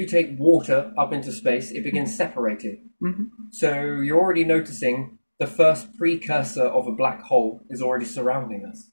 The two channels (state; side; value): inverted; both; correlation -1.00